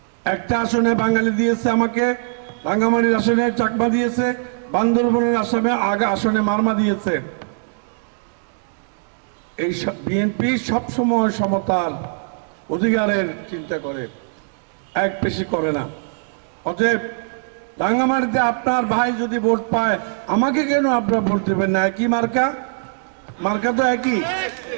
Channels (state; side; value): silent; left; digital silence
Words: একটা আসনে বাঙালি দিয়েছে আমাকে, রাঙ্গামাটির আসনে চাকমা দিয়েছে, বান্দরবনের আসনে মারমা দিয়েছে। এই বিএনপি সবসময় সমতার অধিকারের চিন্তা করে, এক বেশি করে না। অতএব রাঙ্গামাটিতে আপনার ভাই যদি ভোট পায়, আমাকে কেন আপনারা ভোট দেবেন না? একই মার্কা, মার্কা তো একই।